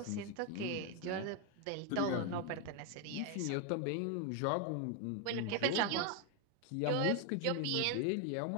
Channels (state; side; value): different; both; correlation 0.01